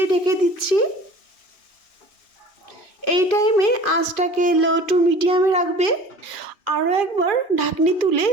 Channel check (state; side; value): late; right; 2.6 ms